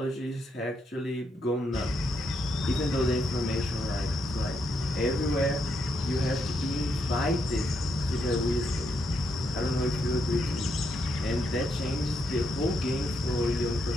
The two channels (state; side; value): normal; both; correlation 0.79